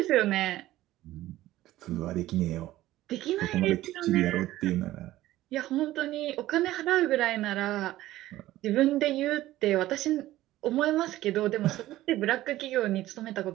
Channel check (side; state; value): left; quieter; 15.5 dB